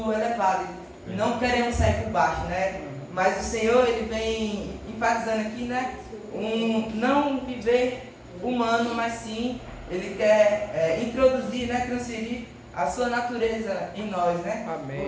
elevado, não queremos sair por baixo, né? Mas o Senhor, ele vem enfatizando aqui, né? Não viver humano, mas sim, ele quer introduzir, né? Transferir a sua natureza em nós, né? Amém.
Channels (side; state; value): both; identical; correlation 1.00